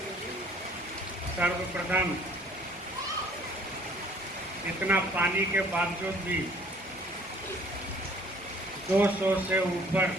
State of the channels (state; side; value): normal; both; correlation 0.56